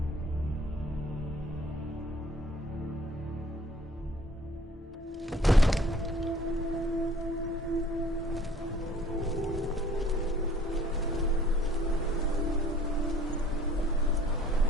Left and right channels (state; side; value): normal; both; correlation 0.55